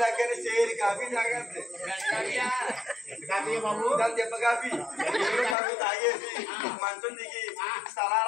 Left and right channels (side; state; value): right; drops out; at 5.6 s